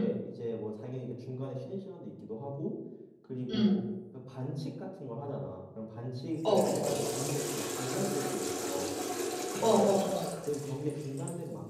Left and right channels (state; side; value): identical; both; correlation 1.00